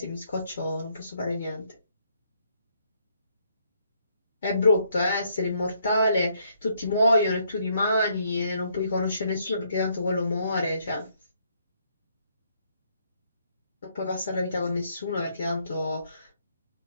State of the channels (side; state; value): both; inverted; correlation -0.71